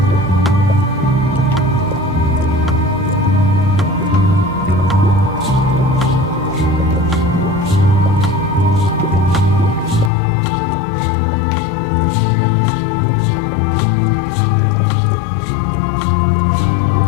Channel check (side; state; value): right; drops out; at 10.1 s